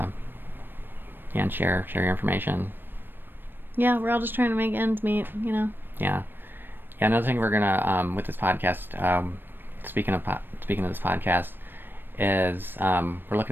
share your information. Yeah, we're all just trying to make ends meet, you know. Yeah. Another thing we're gonna with this podcast, speaking of this podcast, is we're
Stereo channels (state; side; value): late; left; 0.095 ms